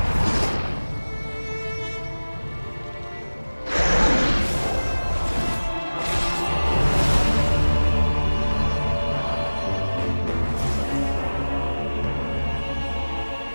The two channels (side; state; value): both; inverted; correlation -1.00